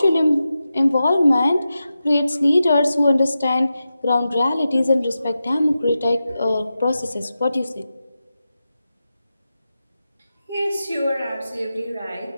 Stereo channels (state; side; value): inverted; both; correlation -0.91